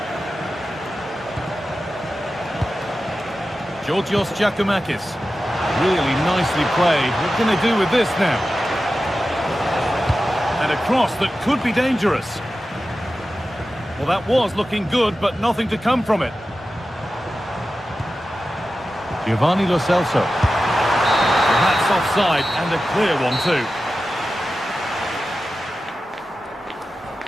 Georgios Giacomakis. Really nicely played. What can they do with this now? And a cross that could be dangerous. Well, that was looking good, but nothing to come from it. Giovanni Lo Celso. Well, that's offside, and a clear one too.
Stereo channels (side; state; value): both; normal; correlation 0.93